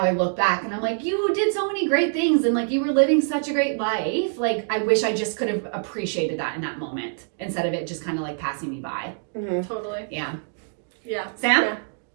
look back and I'm like, you did so many great things and like you were living such a great life. Like I wish I just could have appreciated that in that moment instead of it just kind of like passing me by. Totally. Yeah. Yeah. Sam? Yeah.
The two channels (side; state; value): left; silent; digital silence